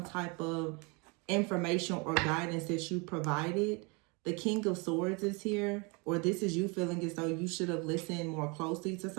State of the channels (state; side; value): quieter; left; 30.2 dB